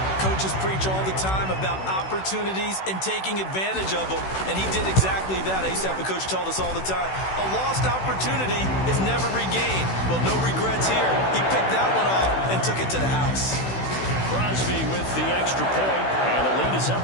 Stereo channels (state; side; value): late; right; 16 ms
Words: Coaches preach all the time about opportunities and taking advantage of them, and he did exactly that. I used to have a coach told us all the time, a lost opportunity is never regained. Well, no regrets here. He picked that one off and took it to the house. Crosby with the extra point, and the lead is up